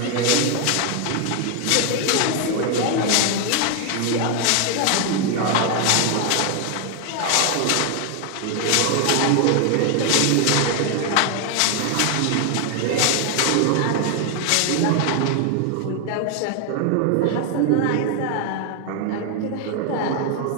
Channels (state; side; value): different; both; correlation 0.01